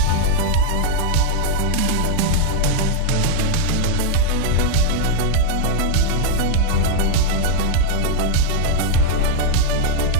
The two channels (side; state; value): both; different; correlation 0.00